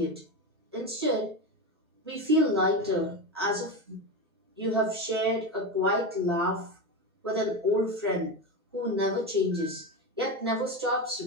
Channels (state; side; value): normal; both; correlation 0.19